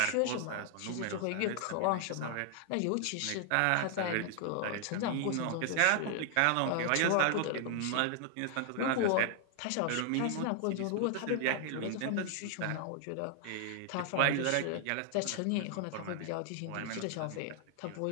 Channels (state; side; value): different; both; correlation 0.00